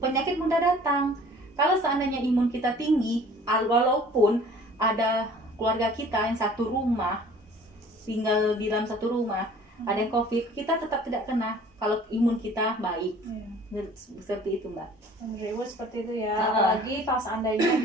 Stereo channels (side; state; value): both; normal; correlation 0.50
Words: mudah datang. Kalau seandainya imun kita tinggi, walaupun ada keluarga kita yang satu rumah, tinggal di dalam satu rumah, ada yang COVID, kita tetap tidak kena kalau imun kita baik. Seperti itu, Mbak. Menurut Ibu seperti itu ya. Apalagi kalau seandainya